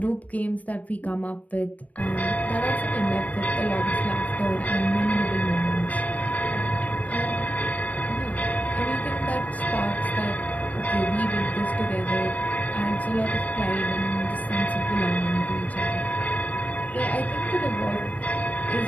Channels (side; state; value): right; late; 0.072 ms